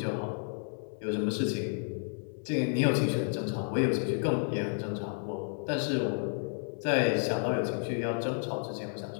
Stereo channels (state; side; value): silent; right; 57 dB below the other